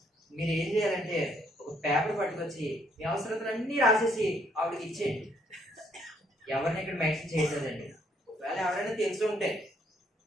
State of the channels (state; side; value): normal; both; correlation 0.69